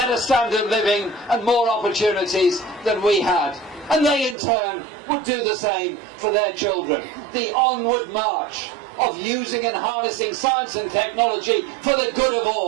standard of living and more opportunities than we had. And they in turn would do the same for their children. The onward march of using and harnessing science and technology for the good of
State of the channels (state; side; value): drops out; left; at 4.4 s